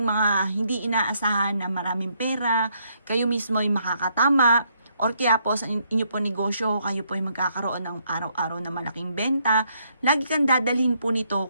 mga hindi inaasahan na maraming pera. Kayo mismo ay makakatama. Or kaya po sa inyo po negosyo, kayo po ay magkakaroon ng araw-araw na malaking benta. Lagi kang dadalhin po nito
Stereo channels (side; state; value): both; inverted; correlation -0.73